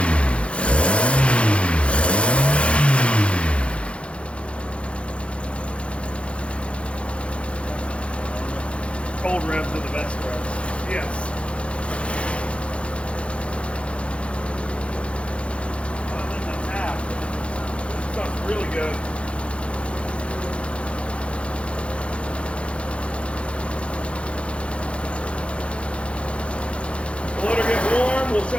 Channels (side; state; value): right; late; 0.060 ms